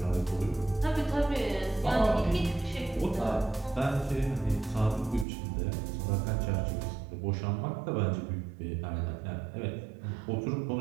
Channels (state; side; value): drops out; left; at 5.2 s